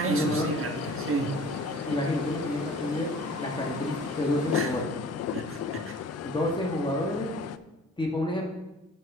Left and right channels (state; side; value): normal; both; correlation 0.48